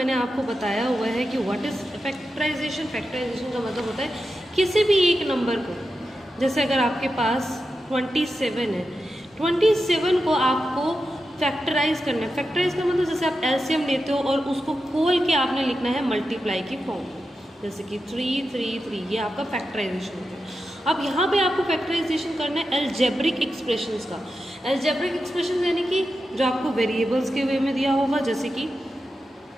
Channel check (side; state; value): both; normal; correlation 0.90